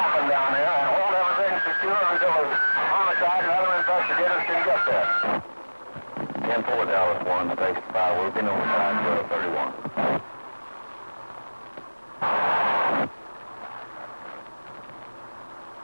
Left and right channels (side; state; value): both; inverted; correlation -1.00